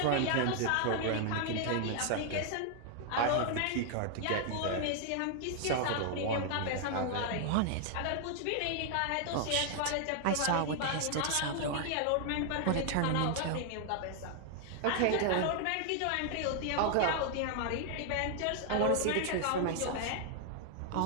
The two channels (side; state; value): both; different; correlation 0.00